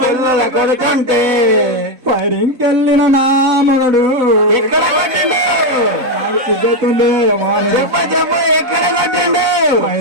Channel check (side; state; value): left; late; 4.0 ms